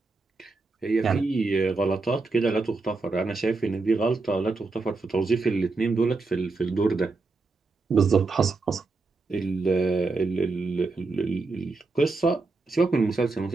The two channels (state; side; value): quieter; left; 3.7 dB